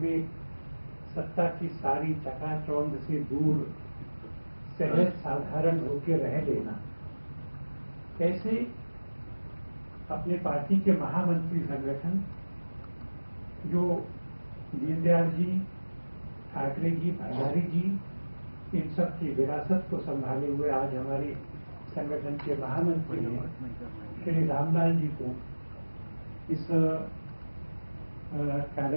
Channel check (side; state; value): both; inverted; correlation -1.00